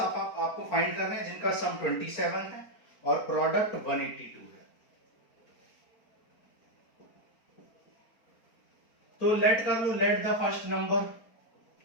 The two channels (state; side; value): late; right; 4.4 ms